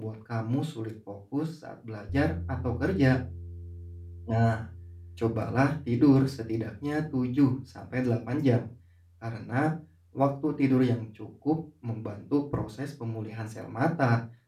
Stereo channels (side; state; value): both; identical; correlation 1.00